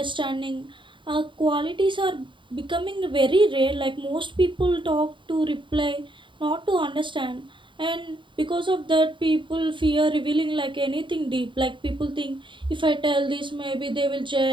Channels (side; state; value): left; late; 0.24 ms